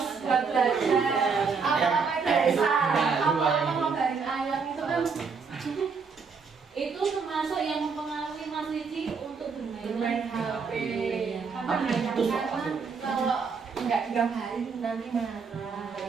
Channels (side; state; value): left; quieter; 5.4 dB